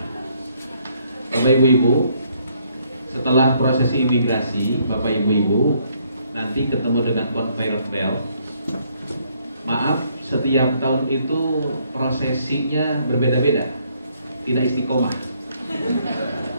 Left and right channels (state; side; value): inverted; both; correlation -0.69